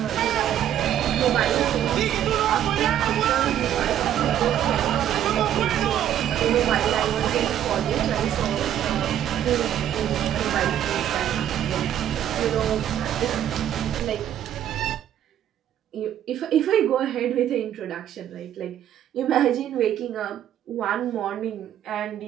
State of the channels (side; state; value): left; quieter; 10.8 dB